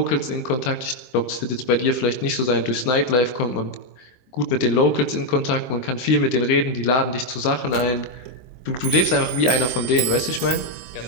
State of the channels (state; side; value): late; right; 23 ms